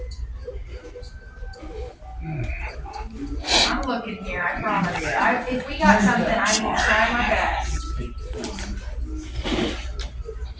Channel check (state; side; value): identical; both; correlation 1.00